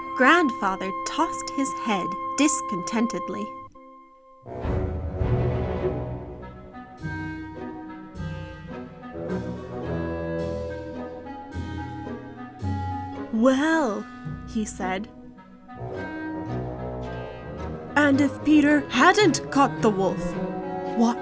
Grandfather tossed his head discontentedly. "Well," he said, "and if Peter hadn't caught the wolf,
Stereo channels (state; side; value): identical; both; correlation 1.00